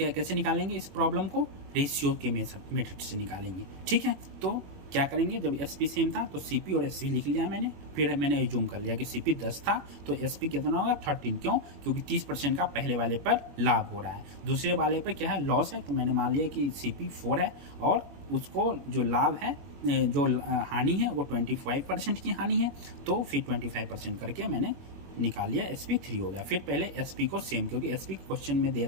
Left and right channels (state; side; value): late; left; 21 ms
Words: कैसे निकालेंगे इस प्रॉब्लम को, रेशियो के मेथड से निकालेंगे। ठीक है, तो क्या करेंगे, जब एसपी सेम था तो सीपी और एसपी लिख लिया मैंने, फिर मैंने एज्यूम कर लिया कि सीपी 10 था तो एसपी कितना होगा 13। क्यों? क्योंकि 30% का पहले वाले पर लाभ हो रहा है, दूसरे वाले पर क्या है, लॉस है, तो मैंने मान लिया कि सीपी 4 है और उसको जो लाभ है, जो हानि है वो 25% की हानि है, तो फिर 25% करके मैंने निकाल लिया, एसपी 3 हो गया। फिर पहले एसपी को सेम, क्योंकि एसपी क्वेश्चन में दे